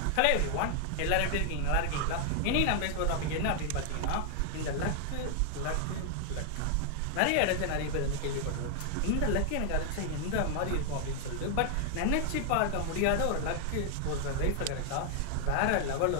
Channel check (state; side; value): different; both; correlation 0.00